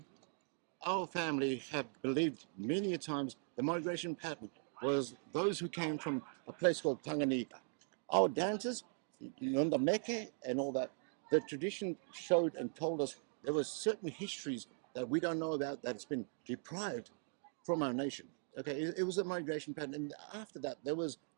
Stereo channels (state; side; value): silent; left; 51 dB below the other